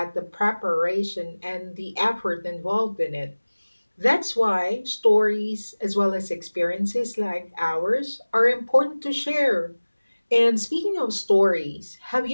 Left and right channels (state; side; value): inverted; both; correlation -1.00